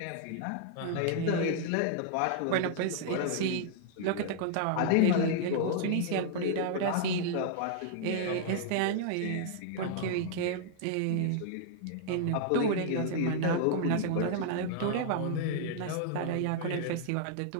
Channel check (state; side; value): different; both; correlation -0.01